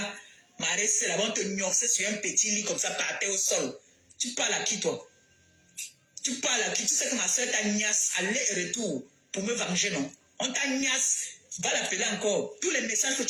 Marissé là-bas, on te gnoxait sur un petit lit comme ça, par terre au sol. Tu parles à qui, toi? Tu parles à qui? Tu sais que ma soeur t'a gnasse aller et retour pour me venger, non? On t'a gnasse Va l'appeler encore. Tous les messages que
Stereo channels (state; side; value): identical; both; correlation 1.00